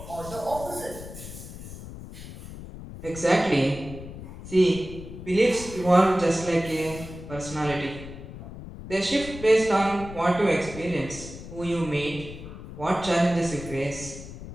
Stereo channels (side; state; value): left; noise; rumble, 12 dB below the sound